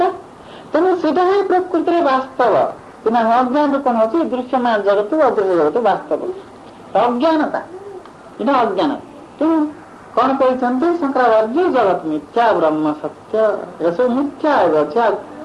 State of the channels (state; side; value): identical; both; correlation 1.00